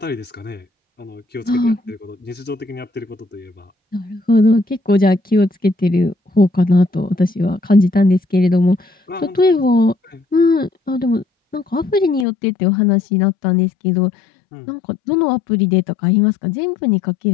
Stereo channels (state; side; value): drops out; right; at 12.2 s